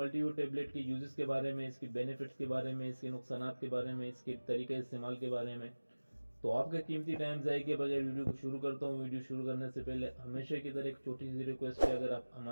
टेबलेट के यूजेस के बारे में, इसकी बेनिफिट्स के बारे में, इसके नुकसानात के बारे में, इसके तरीके इस्तेमाल के बारे में। तो आपका कीमती टाइम ज़ाया किए बगैर वीडियो को शुरू करता हूँ। वीडियो शुरू करने से पहले हमेशा की तरह एक छोटी सी रिक्वेस्ट है, अगर आप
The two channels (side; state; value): both; inverted; correlation -1.00